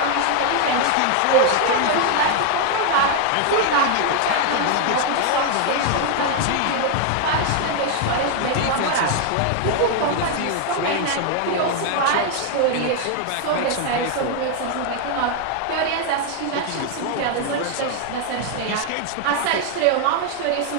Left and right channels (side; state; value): both; different; correlation 0.00